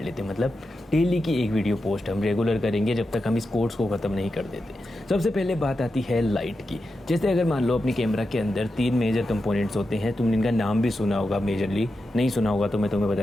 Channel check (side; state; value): both; normal; correlation 0.89